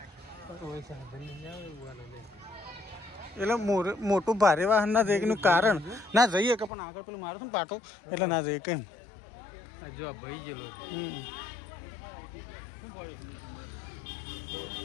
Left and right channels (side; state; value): right; drops out; at 6.7 s